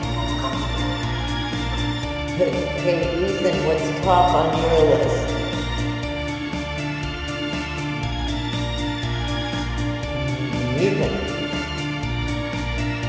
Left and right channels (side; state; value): both; identical; correlation 1.00